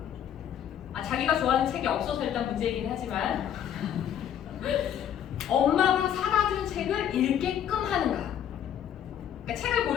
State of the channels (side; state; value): right; quieter; 9.7 dB